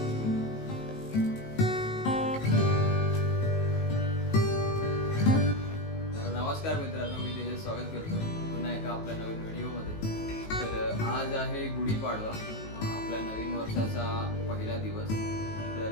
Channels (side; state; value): right; late; 19 ms